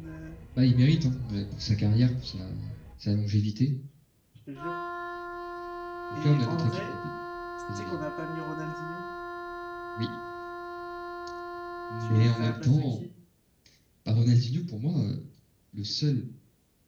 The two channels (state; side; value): identical; both; correlation 1.00